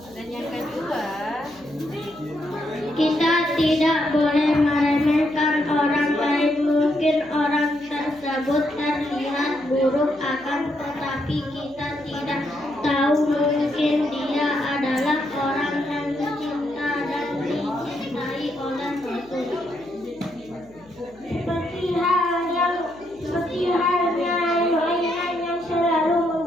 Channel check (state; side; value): noise; left; hum, 26 dB below the sound